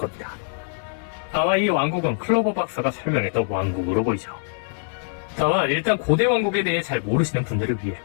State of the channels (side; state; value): right; silent; digital silence